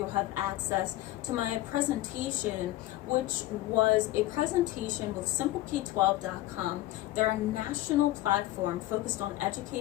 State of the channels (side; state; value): right; quieter; 16.3 dB